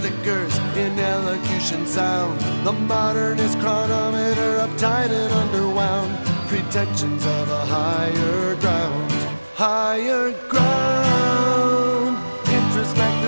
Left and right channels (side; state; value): both; inverted; correlation -1.00